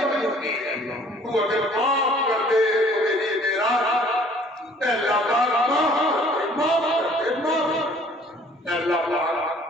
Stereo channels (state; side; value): normal; both; correlation 0.55